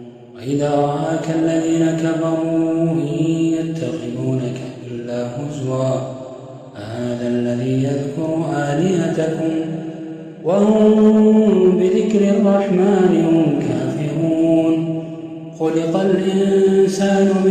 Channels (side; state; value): both; identical; correlation 1.00